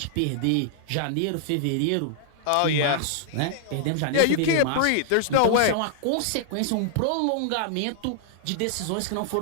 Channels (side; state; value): both; different; correlation -0.01